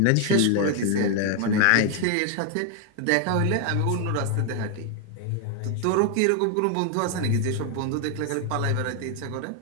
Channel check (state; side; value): different; both; correlation 0.00